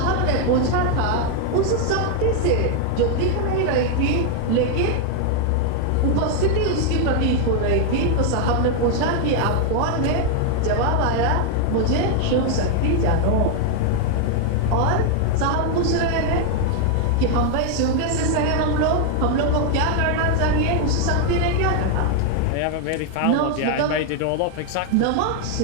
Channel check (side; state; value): both; different; correlation 0.00